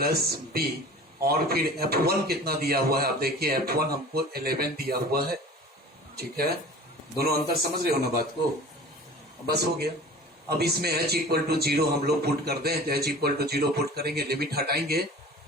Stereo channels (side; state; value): both; normal; correlation 0.41